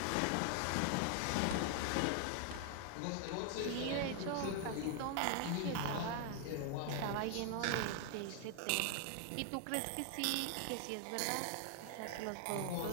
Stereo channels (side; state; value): both; different; correlation 0.00